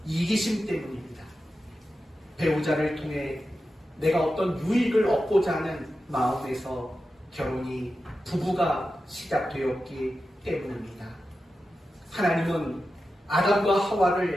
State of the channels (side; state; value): both; normal; correlation 0.91